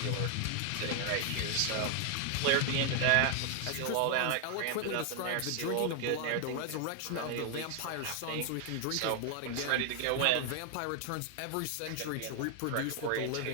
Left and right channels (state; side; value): different; both; correlation 0.00